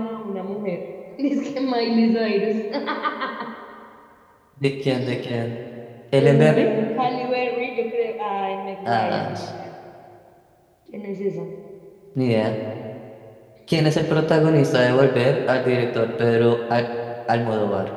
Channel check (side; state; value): both; identical; correlation 1.00